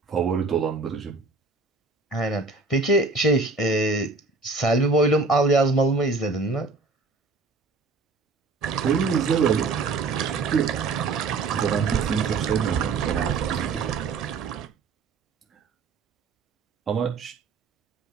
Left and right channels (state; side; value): quieter; left; 3.9 dB